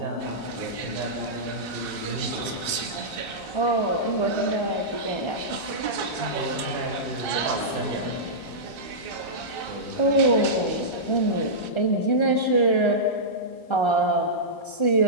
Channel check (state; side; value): late; right; 1.3 ms